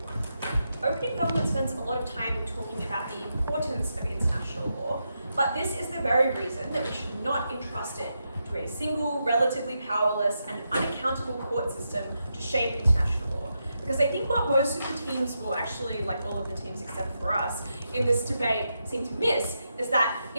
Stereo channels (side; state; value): both; inverted; correlation -0.85